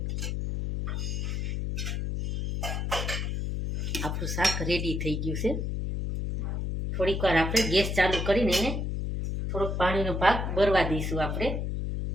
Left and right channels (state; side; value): noise; left; hum, 1 dB below the sound